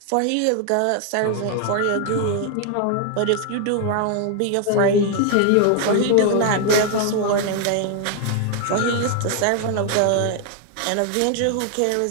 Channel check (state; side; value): different; both; correlation 0.00